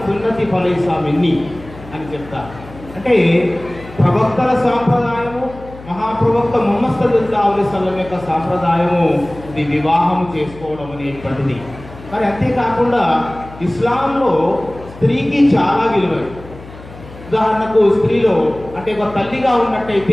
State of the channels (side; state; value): left; noise; hum, 17 dB below the sound